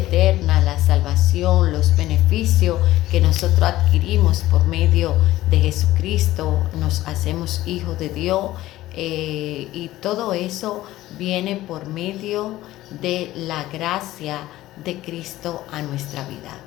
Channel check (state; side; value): quieter; right; 15.8 dB